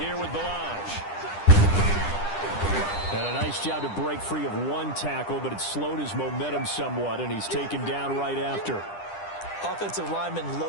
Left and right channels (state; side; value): late; right; 10 ms